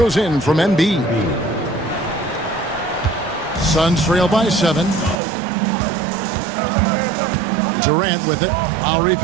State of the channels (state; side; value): drops out; left; at 5.2 s